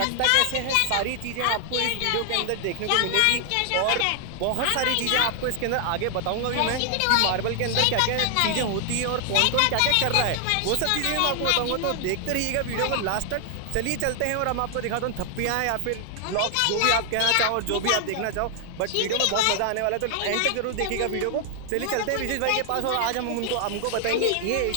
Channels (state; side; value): different; both; correlation 0.00